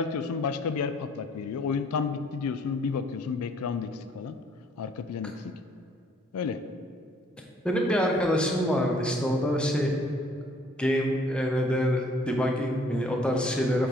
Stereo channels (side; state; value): both; normal; correlation 0.60